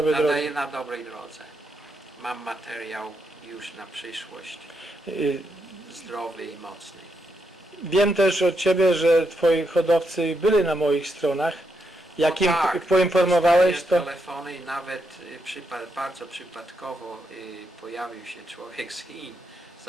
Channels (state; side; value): normal; both; correlation 0.81